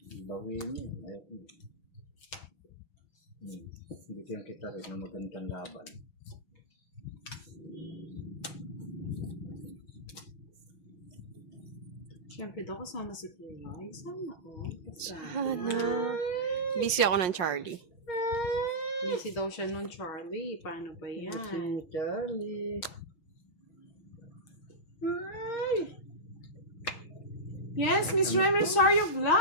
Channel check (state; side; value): late; right; 5.6 ms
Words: Bawin mo. Ayoko. Bigyan kita rin ng magandang laban. Siyempre daw kasama si Kiray. Sana ko. Sana. Busy ako ng Charlie. Busy daw siya nun, Charlie. Paano ba yan? Si Charlie. Ay! Yes, Miss Rem, sorry of